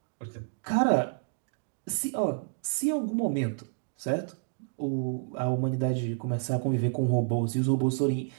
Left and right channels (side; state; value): left; silent; digital silence